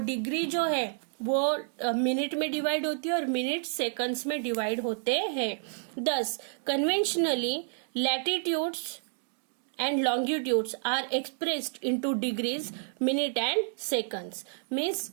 डिग्री जो है वो मिनट में डिवाइड होती है और मिनट सेकंड्स में डिवाइड होते हैं। दस conventionally latitudes and longitudes are expressed into degrees, minute and seconds. Means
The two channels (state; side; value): silent; left; digital silence